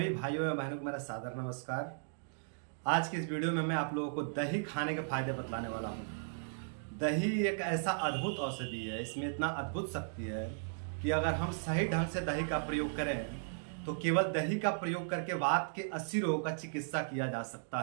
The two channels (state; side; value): silent; left; digital silence